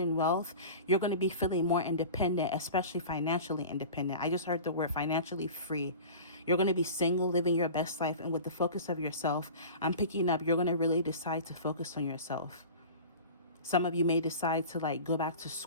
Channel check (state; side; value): inverted; both; correlation -0.37